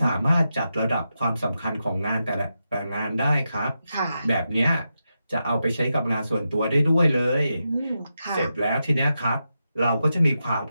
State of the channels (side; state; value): both; inverted; correlation -0.88